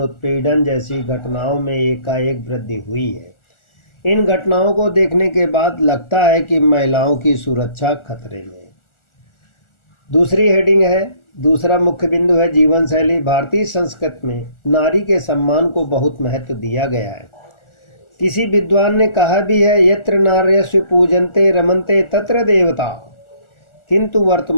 उत्पीड़न जैसी घटनाओं में एकाएक वृद्धि हुई है। इन घटनाओं को देखने के बाद लगता है कि महिलाओं की सुरक्षा खतरे में है। दूसरी हेडिंग है, दूसरा मुख्य बिंदु है जीवन शैली। भारतीय संस्कृति में नारी के सम्मान को बहुत महत्व दिया गया है। किसी विद्वान ने कहा भी है, यत्र नार्यस्व पूजन्ते रमन्ते तत्र देवता। किंतु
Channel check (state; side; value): late; right; 1.4 ms